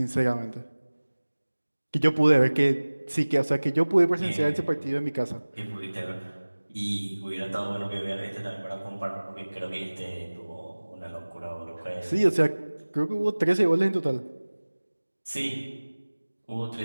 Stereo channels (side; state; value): both; inverted; correlation -1.00